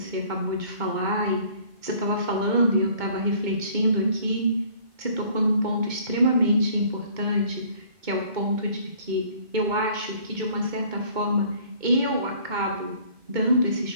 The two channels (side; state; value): left; late; 2.2 ms